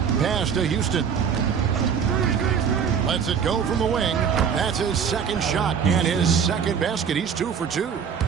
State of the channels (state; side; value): quieter; left; 7.1 dB